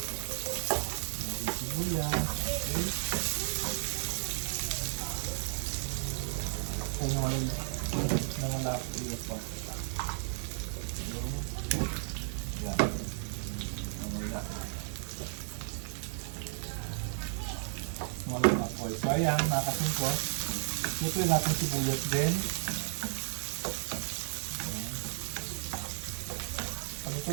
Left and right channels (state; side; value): silent; left; 55 dB below the other